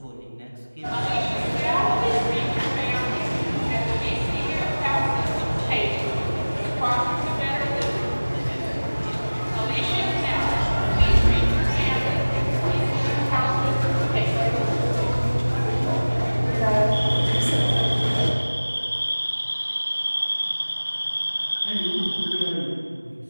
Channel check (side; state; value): both; inverted; correlation -1.00